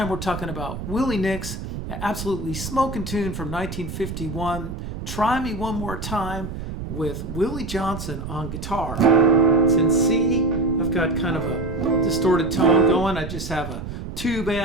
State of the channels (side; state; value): right; noise; rumble, 8 dB below the sound